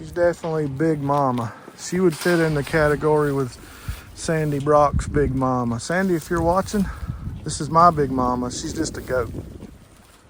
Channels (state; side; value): identical; both; correlation 1.00